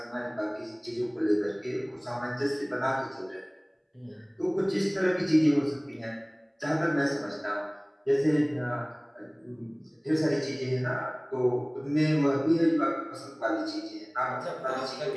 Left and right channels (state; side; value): identical; both; correlation 1.00